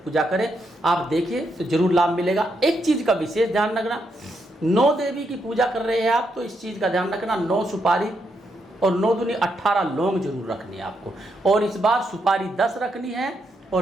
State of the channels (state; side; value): normal; both; correlation 0.79